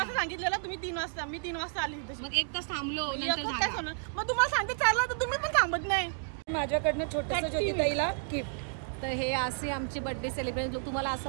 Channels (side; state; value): left; silent; 57 dB below the other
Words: सांगितलेलं तुम्ही 3 वाजता. मी 3 वाजता आली. मग 1 तास थांबलो. मग तुम्हाला सांगते 4ला तर तुम्ही पण थांबत नाही. माझ्याकडनं छोटं ज्योतिताईला गिफ्ट. तर हे असे आमचे बर्थडे सेलिब्रेशन तुम्हाला